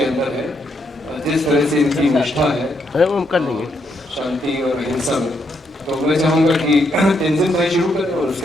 अंदर है, जिस तरह से इनकी निष्ठा है शांति और अहिंसा में। तो मैं चाहूँगा कि तेंजिन भाई शुरू करें और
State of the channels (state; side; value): normal; both; correlation 0.77